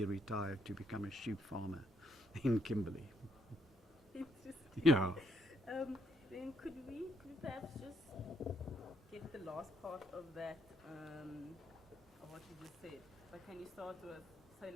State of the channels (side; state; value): both; normal; correlation 0.74